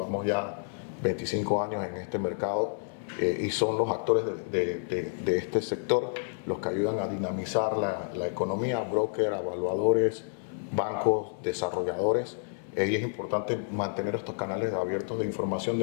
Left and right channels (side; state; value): right; silent; 58 dB below the other